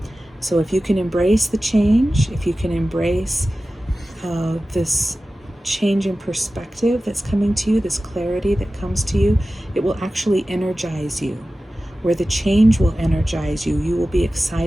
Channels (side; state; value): both; normal; correlation 0.95